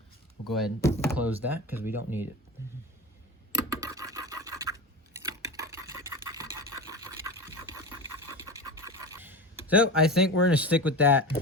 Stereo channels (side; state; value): both; normal; correlation 0.27